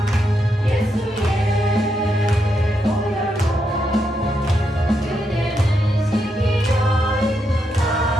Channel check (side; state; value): both; normal; correlation 0.81